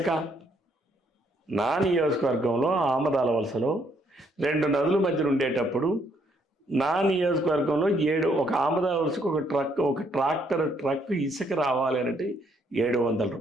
నా నియోజకవర్గంలో ఆమదాల వలసలో 2 నదుల మధ్యన ఉండేటప్పుడు నా నియోజకవర్గంలో ఒక ఆమదాల వలసకు ఒక ట్రాక్టర్ ట్రక్ ఇసుక రావాలి అంటే 700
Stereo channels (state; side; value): normal; both; correlation 0.70